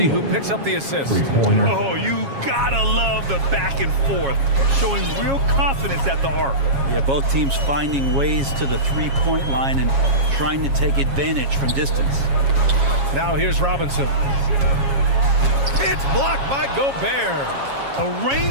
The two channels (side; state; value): left; late; 7.3 ms